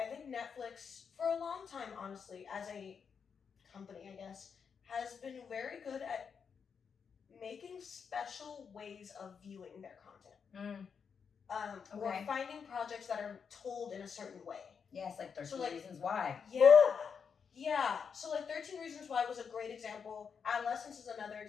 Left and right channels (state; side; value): quieter; right; 6.4 dB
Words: think Netflix, for a long time, honestly, as a company, I guess, has been very good at making special ways of viewing their content. Or finding projects that are told in a certain way. Yes, like 13 Reasons Why. Yeah. So 13 Reasons Why was a great example. Adolescence is another